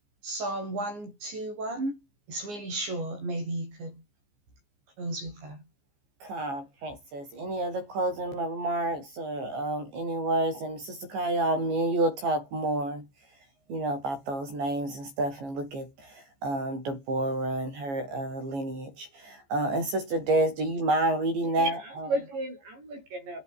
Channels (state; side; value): late; left; 14 ms